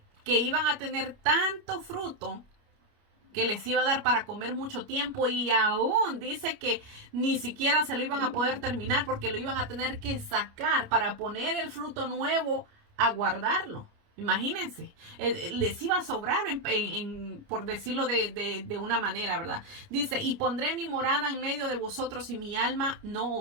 iban a tener tanto fruto que les iba a dar para comer mucho tiempo y aún dice que ni siquiera se lo iban a poder terminar porque lo iban a tener que sacar para poner el fruto nuevo a guardarlo. Imagínense, les iba a sobrar por decirlo de una manera, ¿verdad? Dice, y pondré mi morada en medio de vosotros y mi alma no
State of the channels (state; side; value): late; left; 29 ms